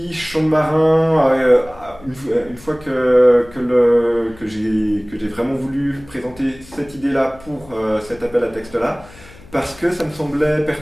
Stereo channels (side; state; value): left; noise; hum, 22 dB below the sound